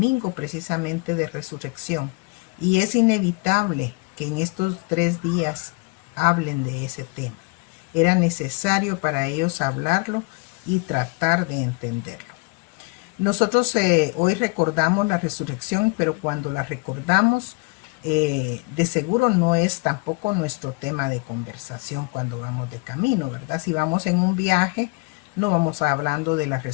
precisamente de resurrección. Y es inevitable que en estos 3 días hablen de ese tema. Era necesario para ellos hablarlo y tratar de entenderlo. Nosotros hoy recordamos la resurrección, pero cuando la recordamos, de seguro no es tampoco nuestro tema de conversación cuando vamos de camino, ¿verdad? Si vamos en un viaje, no vamos hablando de la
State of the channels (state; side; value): quieter; right; 28.7 dB